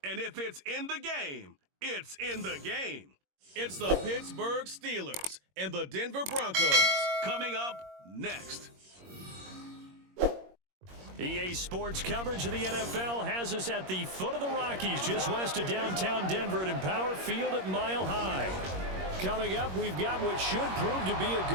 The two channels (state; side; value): late; left; 21 ms